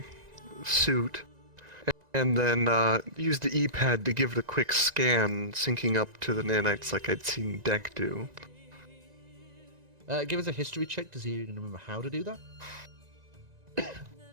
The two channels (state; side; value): late; left; 1.9 ms